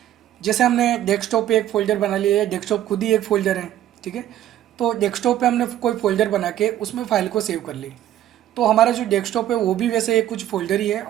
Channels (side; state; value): left; quieter; 12.3 dB